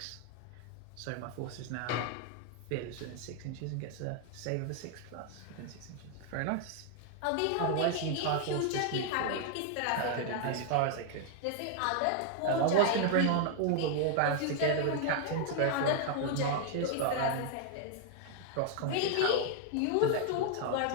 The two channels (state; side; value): different; both; correlation 0.00